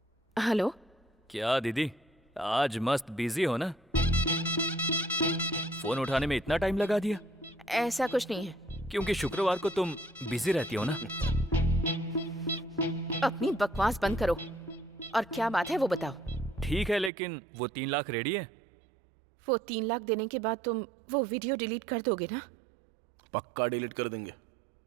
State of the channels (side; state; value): left; drops out; at 17.1 s